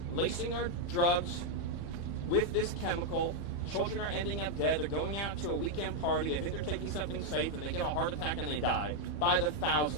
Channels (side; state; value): right; late; 31 ms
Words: lacing our drugs with this chemical. Children are ending up dead. They're going out to a weekend party. They think they're taking something safe, and they get a heart attack and they die by the